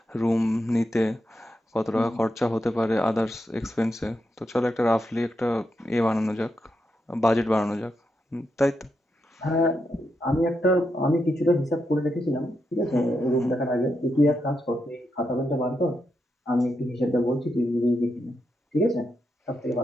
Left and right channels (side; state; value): both; normal; correlation 0.84